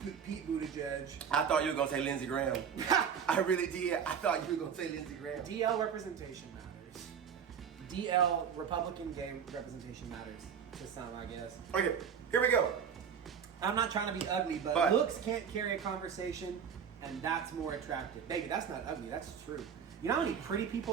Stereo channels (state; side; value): quieter; left; 7.4 dB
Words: Pete Buttigieg. I thought you were gonna say Lindsey Graham. I really did. I thought you were gonna say Lindsey Graham. DL representation matters. DL Republican gay representation matters to some, I guess. Okay, here we go. I'm not trying to be ugly, but looks can't carry a conversation, and that's more attractive. Baby, that's not ugly. That's true. You know how many pretty